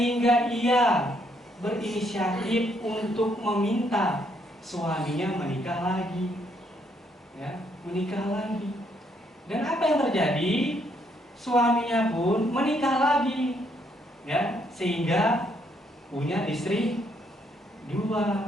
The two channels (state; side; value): normal; both; correlation 0.72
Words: ia berinisiatif untuk meminta suaminya menikah lagi. Ya, menikah lagi. Dan apa yang terjadi? Suaminya pun menikah lagi. Ya, sehingga punya istri